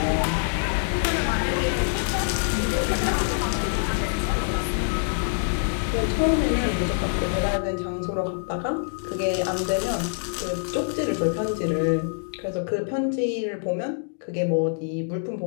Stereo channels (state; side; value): silent; right; digital silence